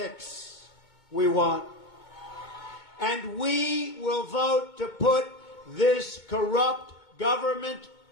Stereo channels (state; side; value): late; right; 2.2 ms